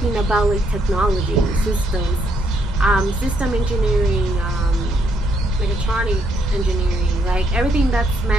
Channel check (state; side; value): normal; both; correlation 0.74